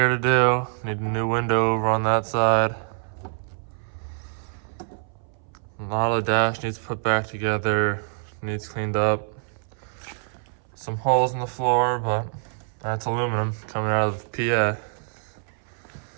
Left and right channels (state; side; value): silent; left; 59 dB below the other